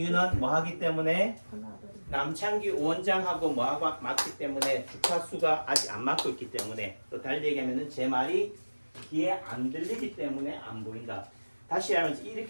뭐 하기 때문에 남창기 원장하고 뭐하고 맞기 때문에 주파수가 아직 안 맞고 있기 때문에 또 달리 얘기하면은 제 말이 귀에 안 들리기 때문에 안 보인다. 다시 하면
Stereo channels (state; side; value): inverted; both; correlation -1.00